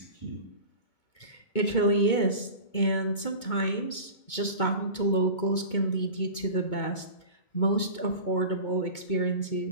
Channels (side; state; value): right; late; 2.2 ms